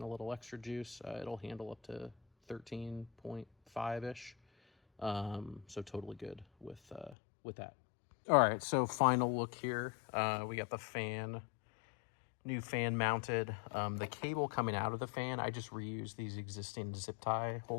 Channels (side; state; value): right; drops out; at 7.2 s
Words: a little extra juice. It'll handle up to 13.5-ish. So totally good with that. All right, so final look here. We got the fan, new fan mounted. The cable coming out of the fan, I just reused these existing zip tie